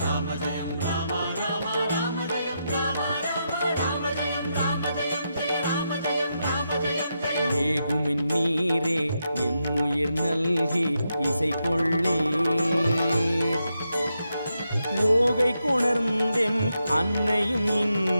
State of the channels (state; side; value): inverted; both; correlation -0.84